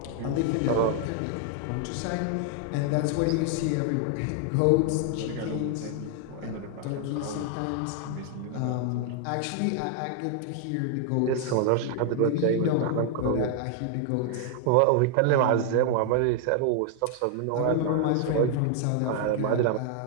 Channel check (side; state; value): both; different; correlation 0.00